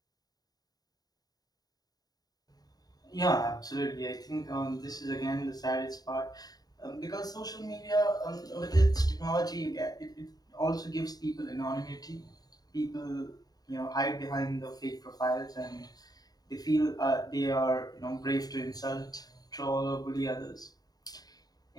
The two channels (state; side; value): late; right; 0.18 ms